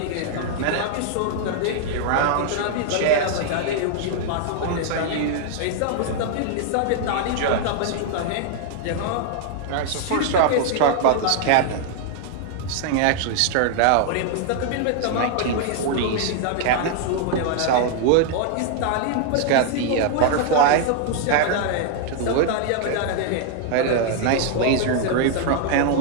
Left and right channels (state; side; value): different; both; correlation 0.00